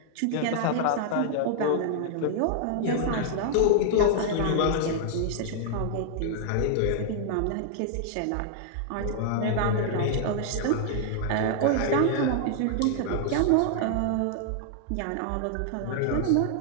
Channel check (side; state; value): both; different; correlation -0.01